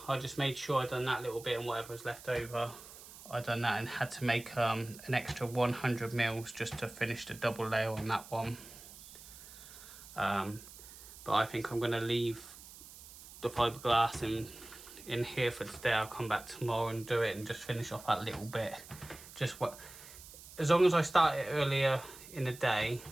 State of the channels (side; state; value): right; noise; hiss, 17 dB below the sound